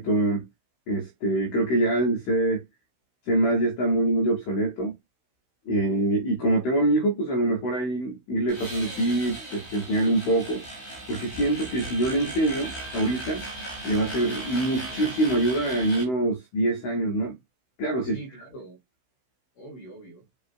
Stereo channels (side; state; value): right; late; 16 ms